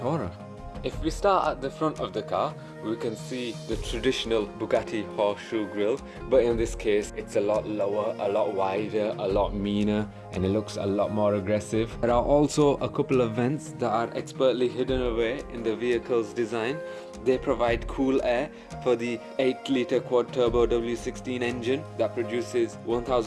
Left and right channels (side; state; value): both; identical; correlation 1.00